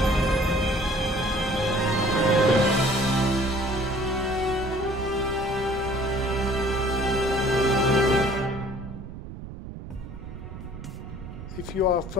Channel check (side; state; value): right; noise; rumble, 11 dB below the sound